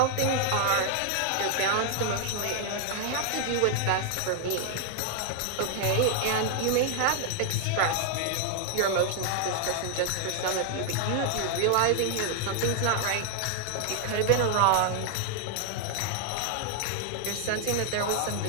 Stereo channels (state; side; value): different; both; correlation 0.00